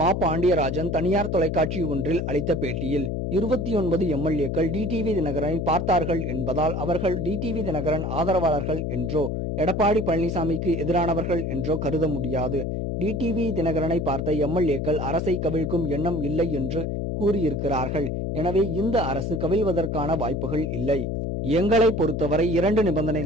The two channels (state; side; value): noise; left; hum, 2 dB below the sound